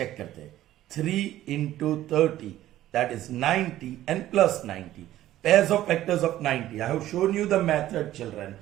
करते हैं. 3 into 30, that is 90 and plus 90. Pairs of factors of 90. I have shown you the method, children.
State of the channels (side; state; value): left; quieter; 13.9 dB